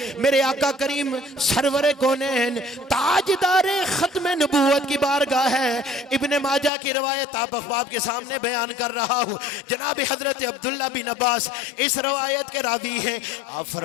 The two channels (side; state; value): right; drops out; at 6.7 s